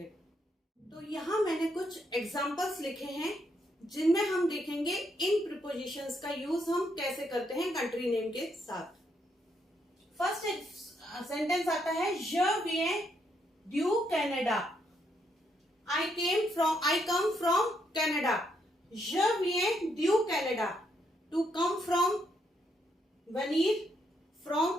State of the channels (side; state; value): both; normal; correlation 0.76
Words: तो यहाँ मैंने कुछ एग्जांपल्स लिखे हैं जिनमें हम देखेंगे इन प्रीपोजिशंस का यूज हम कैसे करते हैं कंट्री नेम के साथ। फर्स्ट सेंटेंस आता है, je viens du Canada, I come from Canada। je viens du Canada, to come from, venir from